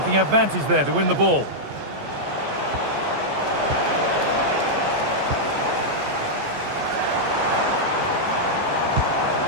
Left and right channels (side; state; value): left; late; 14 ms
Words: advantage there to win the ball.